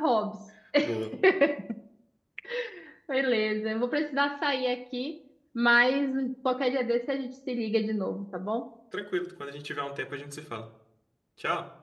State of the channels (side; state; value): both; identical; correlation 1.00